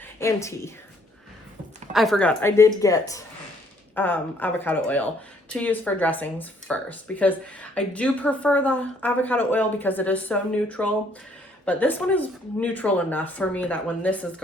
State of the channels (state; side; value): normal; both; correlation 0.64